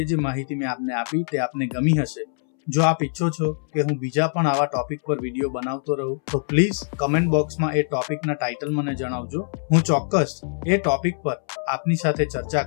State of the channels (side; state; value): right; silent; 63 dB below the other